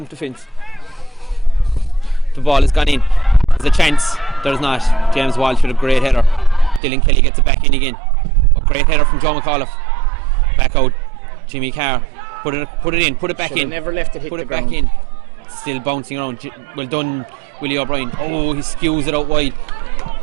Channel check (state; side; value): drops out; left; at 6.8 s